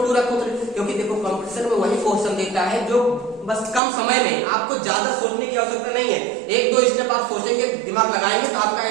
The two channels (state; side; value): drops out; left; at 3.8 s